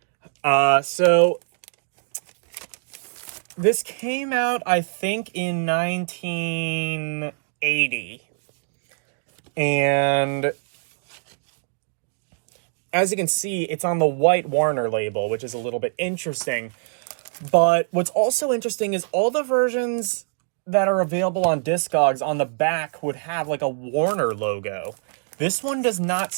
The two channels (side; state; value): left; silent; digital silence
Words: So this came out, I think, in 1980. And as you can see, it's on the White Warner label, which is a little bit interesting. But what's also interesting is all the versions that are available on Discogs on the back would have like a Warner logo. This one does not